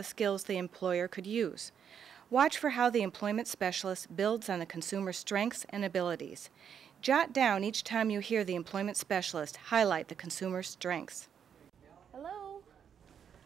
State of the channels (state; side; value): quieter; left; 8.0 dB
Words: skills the employer could use. Watch for how the employment specialist builds on the consumer's strengths and abilities. Jot down each time you hear the employment specialist highlight the consumer's strengths. Hello.